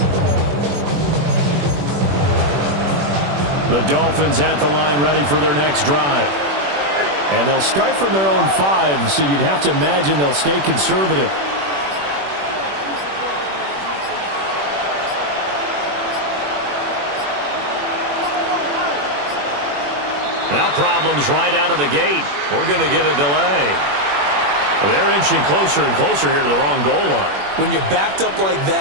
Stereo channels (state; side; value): late; left; 21 ms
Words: The Dolphins at the line ready for their next drive. And they'll start from their own 5, so you'd have to imagine they'll stay conservative. Now problems right out of the gate. We're going to get a delay. They're inching closer and closer here to the wrong goal line. When you're backed up like